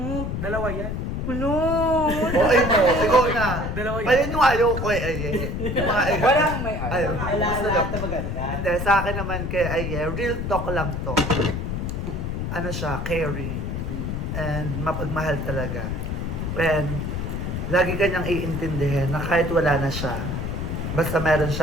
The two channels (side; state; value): left; noise; rumble, 3 dB below the sound